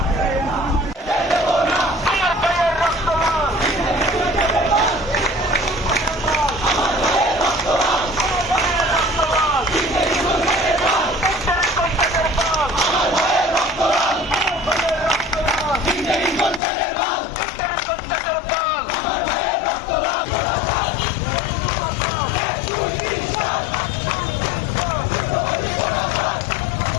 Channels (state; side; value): drops out; right; at 16.6 s